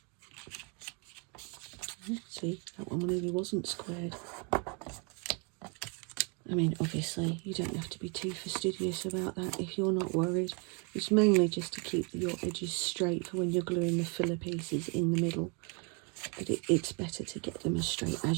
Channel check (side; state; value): left; quieter; 34.8 dB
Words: See, that one really wasn't squared. I mean, obviously, you don't have to be too fastidious about that if you're not worried. It's mainly just to keep your edges straight for when you're gluing the filler pieces in the middle. But it's better to get them as straight